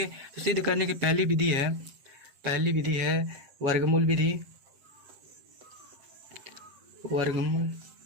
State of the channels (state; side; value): late; left; 7.7 ms